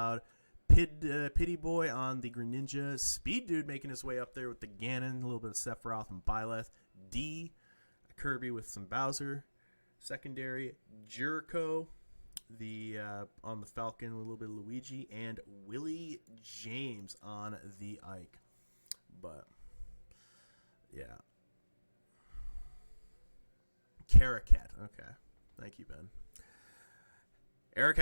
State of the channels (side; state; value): both; inverted; correlation -1.00